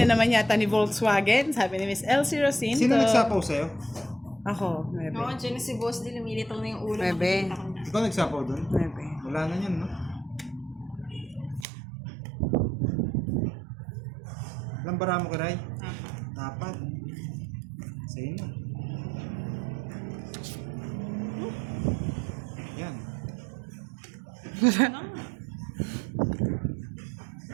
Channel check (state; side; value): drops out; left; at 11.7 s